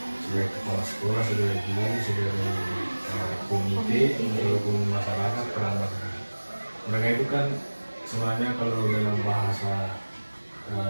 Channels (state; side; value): inverted; both; correlation -1.00